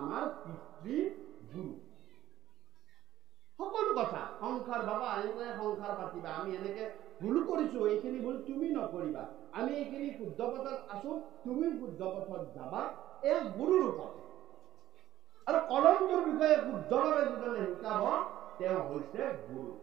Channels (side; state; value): left; quieter; 13.5 dB